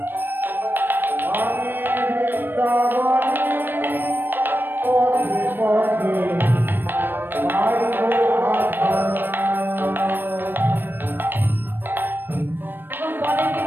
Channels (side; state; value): left; late; 0.095 ms